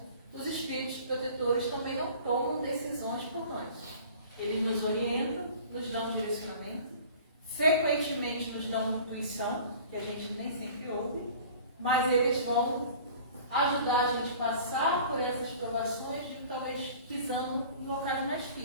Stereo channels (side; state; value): both; inverted; correlation -0.45